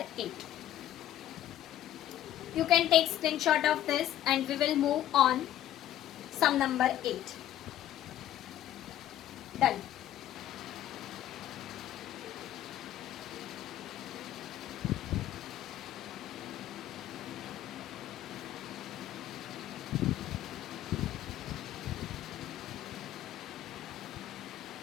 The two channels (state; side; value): quieter; right; 12.3 dB